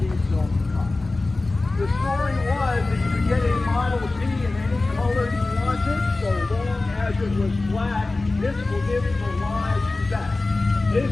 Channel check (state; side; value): quieter; right; 3.2 dB